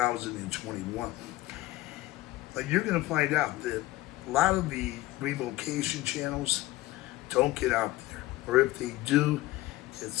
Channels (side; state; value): right; quieter; 17.8 dB